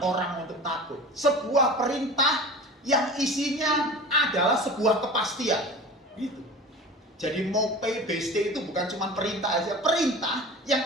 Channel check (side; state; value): both; normal; correlation 0.36